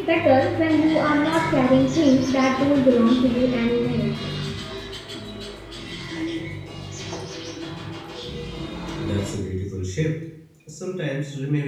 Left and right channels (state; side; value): identical; both; correlation 1.00